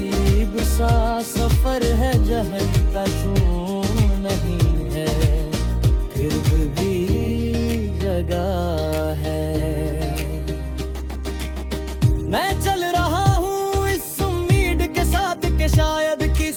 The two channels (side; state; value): both; identical; correlation 1.00